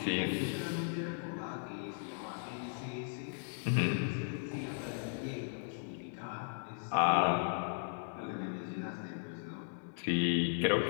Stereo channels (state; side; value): silent; right; digital silence